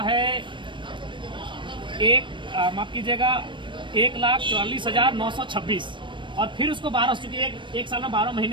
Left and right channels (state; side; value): late; left; 0.23 ms